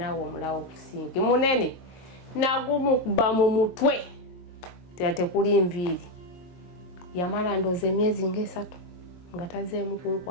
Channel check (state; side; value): late; right; 22 ms